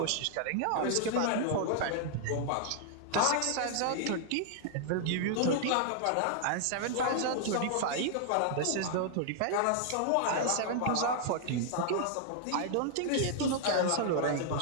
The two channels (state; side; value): different; both; correlation -0.01